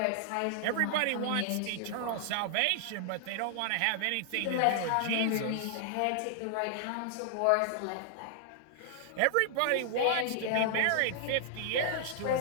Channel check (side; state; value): both; different; correlation 0.00